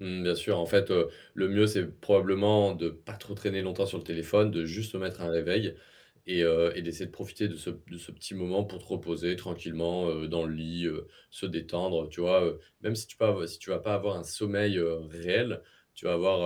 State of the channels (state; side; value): identical; both; correlation 1.00